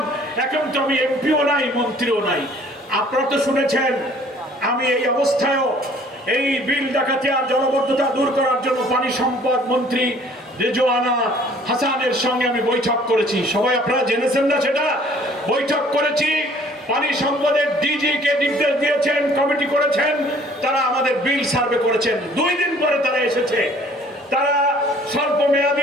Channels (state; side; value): normal; both; correlation 0.55